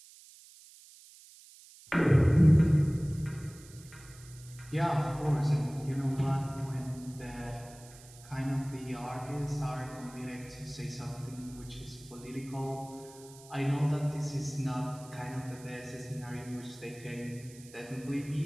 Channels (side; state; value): right; noise; hiss, 21 dB below the sound